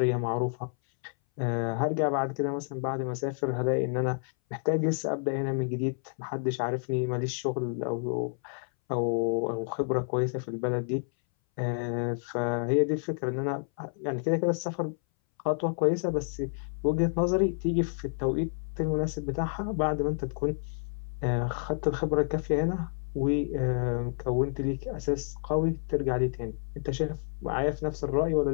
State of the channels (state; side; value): silent; right; 58 dB below the other